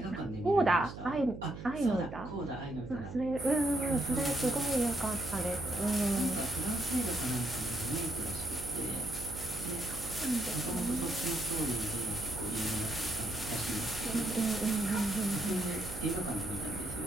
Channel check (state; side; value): noise; right; hum, 11 dB below the sound